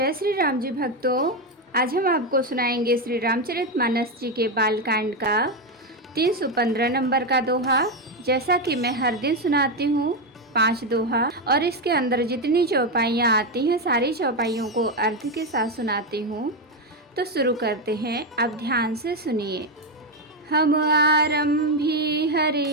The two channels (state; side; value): normal; both; correlation 0.09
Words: श्री राम जी भक्तों। आज हम आपको सुनाएंगे श्री रामचरितमानस जी के बालकांड का 315 नंबर का दोहा। जैसा कि मैं हर दिन सुनाती हूँ 5 दोहा, और इसके अंदर जितनी चौपाइयाँ आती हैं सारी चौपाइयों को अर्थ के साथ सुनाती हूँ। तो शुरू करते हैं, आप ध्यान से सुनिए। हम आरंभी